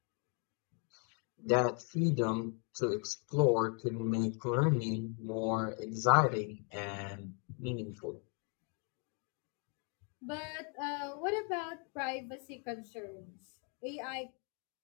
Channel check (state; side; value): quieter; right; 39.5 dB